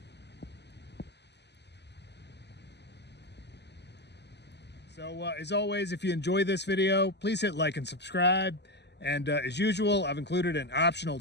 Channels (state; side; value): late; right; 0.50 ms